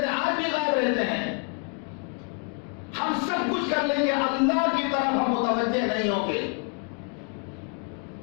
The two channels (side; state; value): right; quieter; 38.2 dB